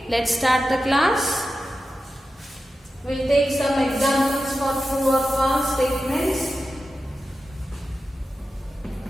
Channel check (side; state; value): both; normal; correlation 0.92